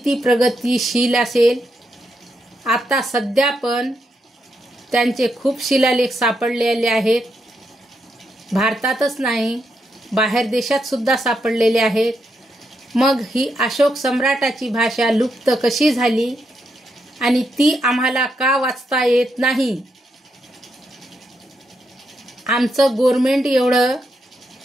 प्रगतिशील असेल. आता सध्या पण त्यांचे खूप शिलालेख सापडलेले आहेत. भारतातच नाही, बाहेर देशात सुद्धा सापडलेले आहेत. मग ही अशोक सम्राटाची भाषा लुप्त कशी झाली आणि ती आम्हाला का वाचता येत नाही? आमचं गव्हर्नमेंट एवढं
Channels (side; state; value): both; normal; correlation 0.81